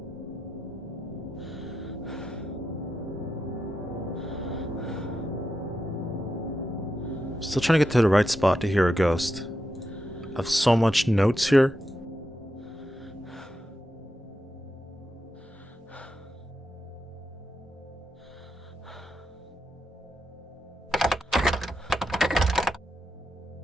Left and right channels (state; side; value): normal; both; correlation 0.86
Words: Still trying to get to the right spot to hear a ghost. I have so much notes here.